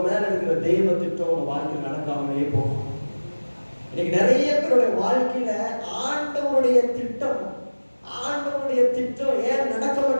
மேல இருக்கிற தெய்வ திட்டம் உங்க வாழ்க்கையில் நடக்காமலே போகும். இன்னைக்கு நிறைய பேருடைய வாழ்க்கையில ஆண்டவருடைய திட்டம் ஏன் நடக்க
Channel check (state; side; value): inverted; both; correlation -1.00